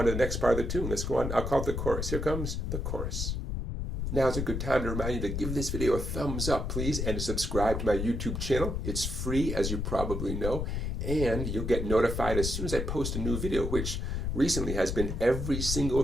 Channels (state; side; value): noise; left; rumble, 2 dB below the sound